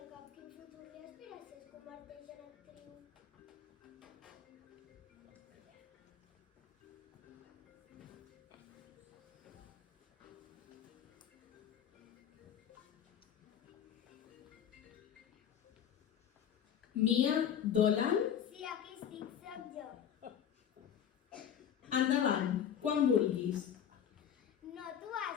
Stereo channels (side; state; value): right; quieter; 9.0 dB